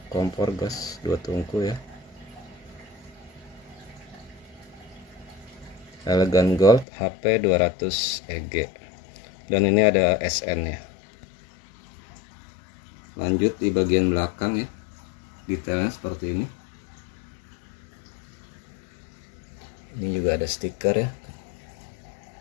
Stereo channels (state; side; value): drops out; right; at 6.9 s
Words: kompor gas 2 tungku ya, Elegan Gold HP 200 EG. Dan ini ada SN nya. Lanjut di bagian belakang ya, detailnya seperti ini. Ini juga ada stiker ya,